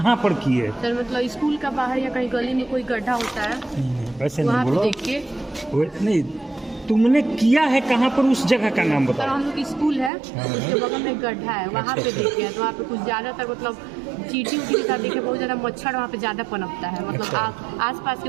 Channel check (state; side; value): drops out; left; at 10.1 s